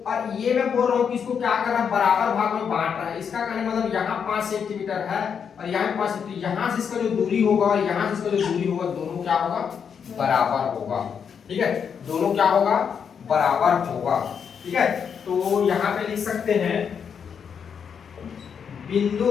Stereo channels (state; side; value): quieter; right; 7.1 dB